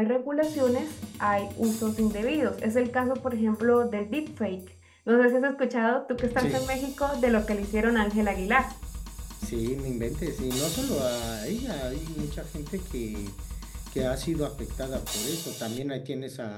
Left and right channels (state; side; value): identical; both; correlation 1.00